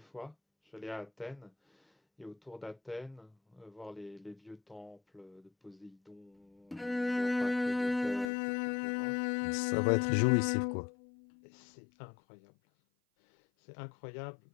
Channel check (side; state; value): right; drops out; at 8.2 s